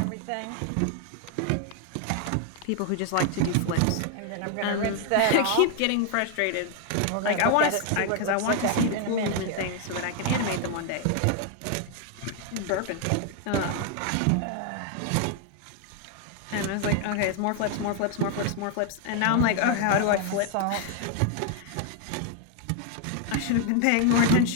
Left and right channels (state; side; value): different; both; correlation 0.00